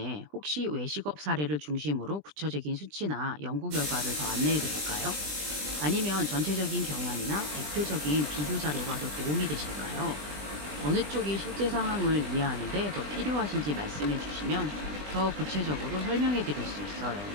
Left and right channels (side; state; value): left; late; 20 ms